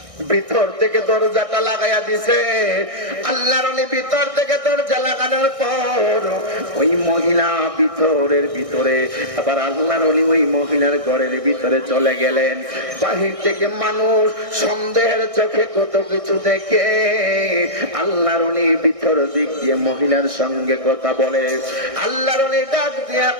ভিতর থেকে দরজাটা লাগাইয়া দিছে। আল্লাহর ওলি ভিতর থেকে দরজা লাগানোর পর ওই মহিলা ভিতরের ভিতরে, আবার আল্লাহর ওলি ওই মহিলার ঘরের ভিতরে চলে গেলেন। বাহির থেকে মানুষ সন্দেহের চোখে কত কিছু দেখে, আল্লাহর ওলি ভিতর দিক দিয়ে মহিলার সঙ্গে কথা বলে। আল্লাহর ওলি ডাক দিয়া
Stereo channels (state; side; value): late; left; 1.6 ms